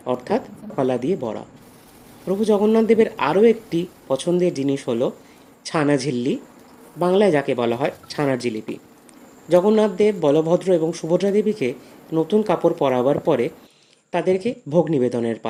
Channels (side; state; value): both; identical; correlation 1.00